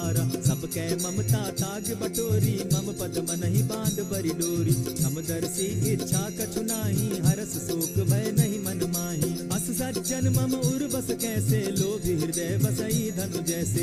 सब कै ममता ताग बटोरी, मम पद मनहि बांध बरि डोरी। समदर्शी इच्छा कछु नाही, हरस शोक भय नहीं मन माही। अस सज्जन मम उर बस कैसे, लोभी हृदय बसई धनु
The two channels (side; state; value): both; identical; correlation 1.00